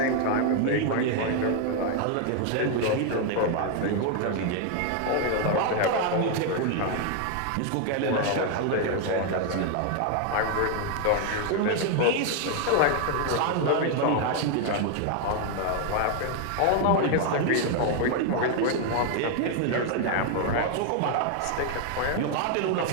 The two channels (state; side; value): different; both; correlation 0.00